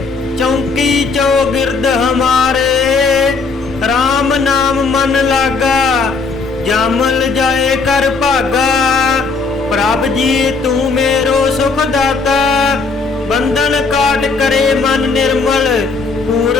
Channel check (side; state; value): right; quieter; 4.4 dB